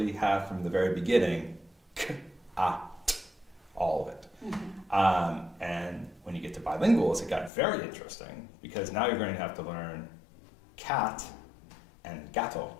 have from the very beginning k-at, all of it? And when you get to bilinguals, it got very interesting because now you're going to have to learn cat and gâteau.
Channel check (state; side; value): drops out; right; at 7.5 s